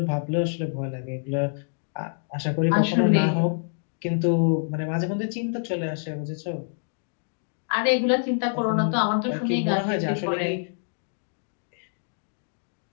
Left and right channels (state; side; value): silent; right; digital silence